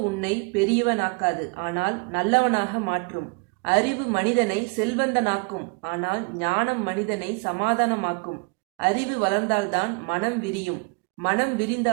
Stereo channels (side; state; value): left; quieter; 32.1 dB